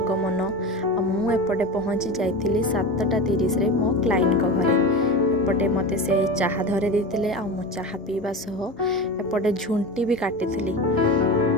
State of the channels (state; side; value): normal; both; correlation 0.26